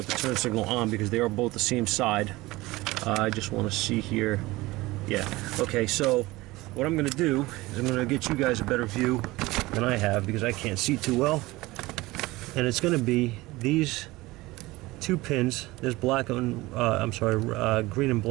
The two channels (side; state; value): left; quieter; 20.1 dB